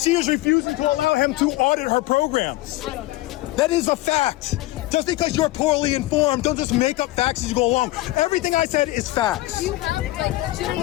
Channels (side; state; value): right; quieter; 18.3 dB